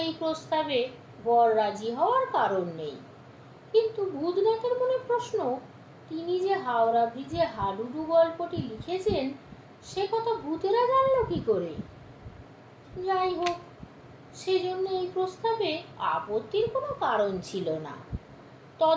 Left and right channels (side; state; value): both; identical; correlation 1.00